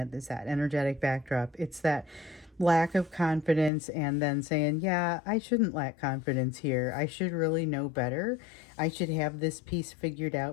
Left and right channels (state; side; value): drops out; right; at 3.7 s